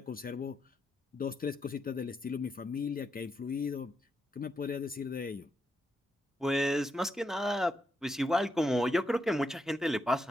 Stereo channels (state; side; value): normal; both; correlation 0.82